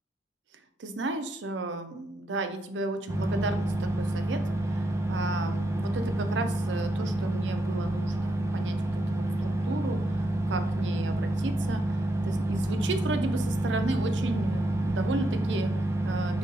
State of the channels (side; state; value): both; normal; correlation 0.80